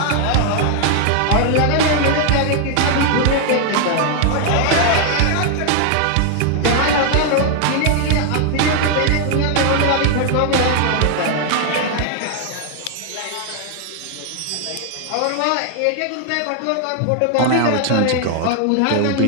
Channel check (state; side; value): different; both; correlation 0.00